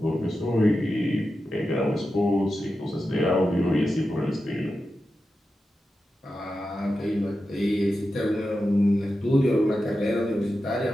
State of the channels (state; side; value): normal; both; correlation 0.91